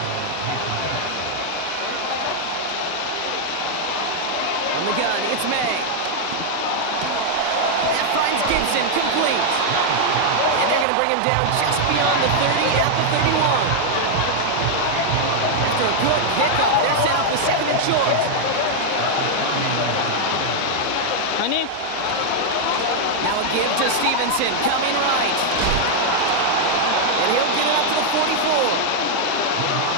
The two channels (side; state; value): both; different; correlation 0.00